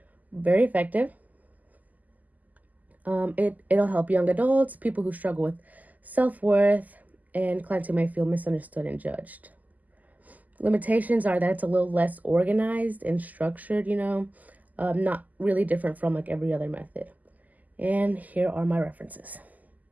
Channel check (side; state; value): left; late; 0.080 ms